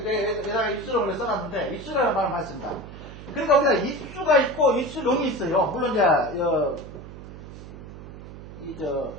내가 입수령을 써놨는데 입수령이라는 말을 많이 씁니다. 그러니까 우리가 입수가 있고 입수령이 있어요. 물론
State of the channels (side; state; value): right; noise; hum, 14 dB below the sound